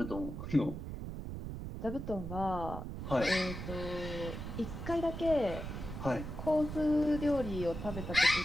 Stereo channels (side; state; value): right; noise; rumble, 7 dB below the sound